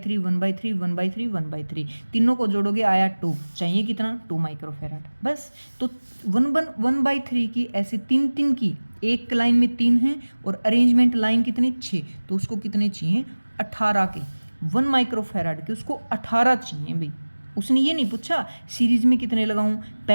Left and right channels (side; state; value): both; inverted; correlation -1.00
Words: 1/3 1/3 1/3, तीनों को जोड़ोगे आया 2, चाहिए कितना 2 माइक्रोफेराड, बस। तो 1/3 की ऐसे 3 की, एक लाइन में 3 हैं और अरेंजमेंट लाइन कितने 6, तो उसको कितने चाहिए 18 के, 1 माइक्रोफेराड के उसको 18 चाहिए भाई। उसने ये नहीं पूछा सीरीज में कितने लगाऊं,